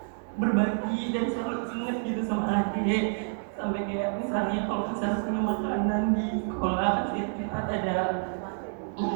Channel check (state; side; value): silent; left; digital silence